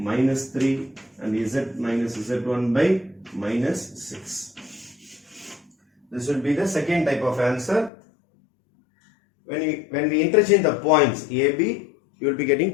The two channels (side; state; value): right; drops out; at 7.9 s